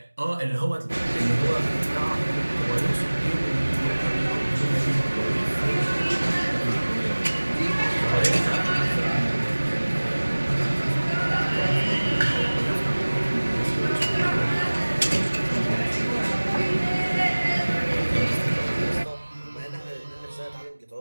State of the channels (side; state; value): both; inverted; correlation -1.00